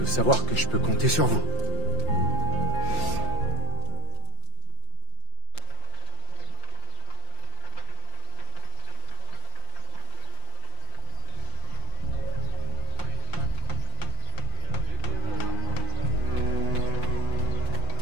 savoir que je peux compter sur vous.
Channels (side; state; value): right; late; 5.7 ms